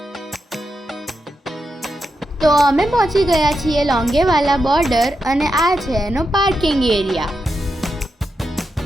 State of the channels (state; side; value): normal; both; correlation 0.86